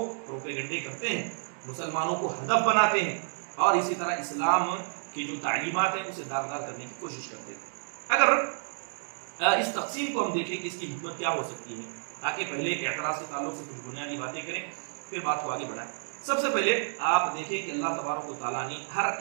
پروپیگنڈے کرتے ہیں، مسلمانوں کو ہدف بناتے ہیں اور اسی طرح اسلام کی جو تعلیمات ہیں اسے داغدار کرنے کی کوشش کرتے ہیں۔ اگر اس تقسیم کو ہم دیکھیں کہ اس کی حکمت کیا ہو سکتی ہے، تاکہ پہلے اعتراض کے تعلق سے کچھ بنیادی باتیں کریں پھر بات کو آگے بڑھائیں۔ سب سے پہلے آپ دیکھیں کہ اللہ تبارک و تعالیٰ نے ہر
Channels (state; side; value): silent; left; digital silence